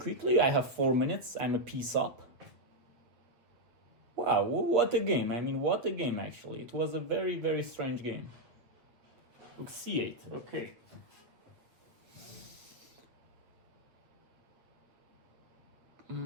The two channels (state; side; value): late; left; 8.4 ms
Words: I have 4 minutes. I'm a piece up. Wow, what a game. I mean, what a game actually. It was a very, very strange game. Rook c8, okay.